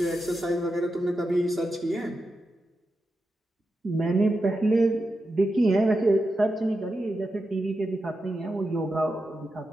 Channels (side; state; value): both; normal; correlation 0.89